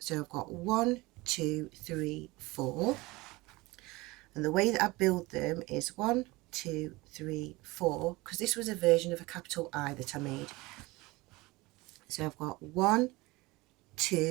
I've got 1, 2, 3, 4, and the way that I build them is 1, 2, 3, 4, because this was a version of a capital I that I made. So I've got 1,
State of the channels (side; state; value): left; quieter; 21.9 dB